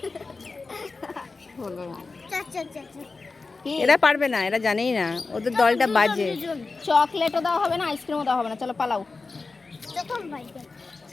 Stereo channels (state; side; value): quieter; right; 4.0 dB